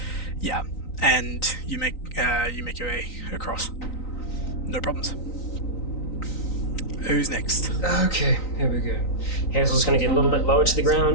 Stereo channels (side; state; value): right; late; 3.9 ms